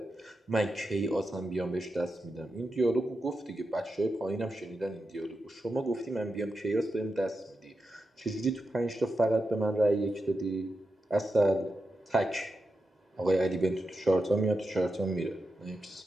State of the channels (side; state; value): both; normal; correlation 0.89